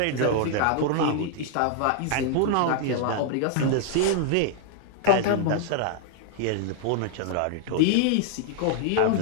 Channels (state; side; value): different; both; correlation -0.01